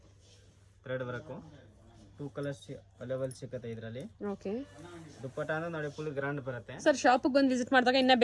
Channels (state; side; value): identical; both; correlation 1.00